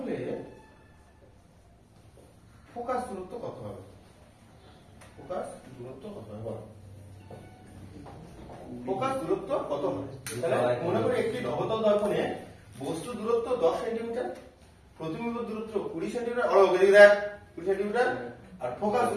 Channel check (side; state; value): both; identical; correlation 1.00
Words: ফোকাস দূরত্ব কত হবে? ফোকাস দূরত্ব কত হবে বল? ফোকাস দূরত্ব কত হবে? তাহলে মনে করি একটি অবতল দর্পণে বস্তু দূরত্ব 10 সেন্টিমিটার, প্রতিবিম্ব দূরত্ব 20 সেন্টিমিটার, দেখ 20 সেন্টিমিটার, আর ফোকাস